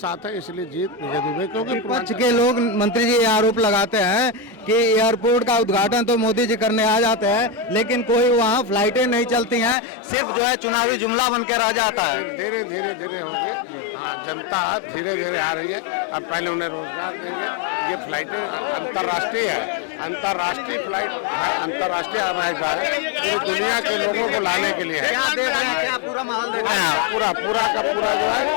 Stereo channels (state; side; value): drops out; right; at 9.8 s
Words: हैं। इसलिए जीत विजय दुबे। क्योंकि विपक्ष के लोग मंत्री जी आरोप लगाते हैं कि एयरपोर्ट का उद्घाटन तो मोदी जी करने आ जाते हैं, लेकिन कोई वहाँ फ्लाइटें नहीं चलती हैं, सिर्फ जो है चुनावी जुमला बन के रह जाता है। धीरे धीरे होंगे। हाँ, जनता धीरे धीरे आ रही है। अब पहले उन्हें रोजगार देंगे। ये फ्लाइटें अंतर्राष्ट्रीय है, अंतर्राष्ट्रीय फ्लाइट है, अंतर्राष्ट्रीय हवाई जहाज है, पूरी दुनिया के लोगों को लाने के लिए है। क्या देख रहे हैं? क्या पूरा माहौल देख रहे हैं? पूरा का पूरा जो है